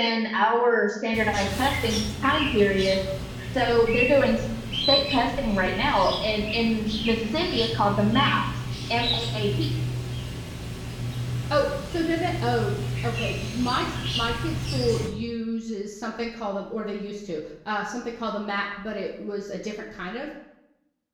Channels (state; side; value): identical; both; correlation 1.00